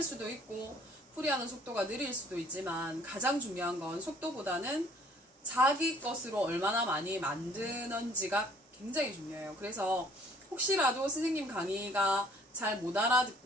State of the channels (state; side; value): normal; both; correlation 0.57